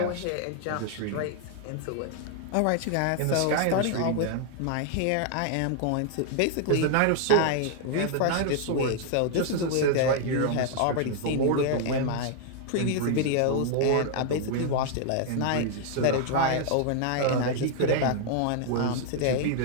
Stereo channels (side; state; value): both; different; correlation 0.00